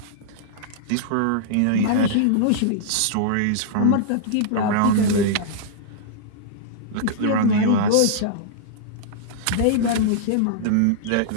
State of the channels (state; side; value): different; both; correlation -0.02